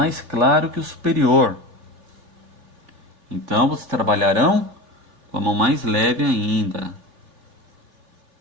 claro que o superior. Então, vocês trabalharão com a mão mais leve ainda.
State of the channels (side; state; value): left; late; 3.5 ms